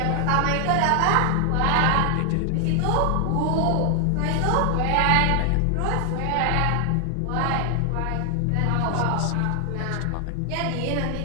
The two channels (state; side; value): different; both; correlation 0.00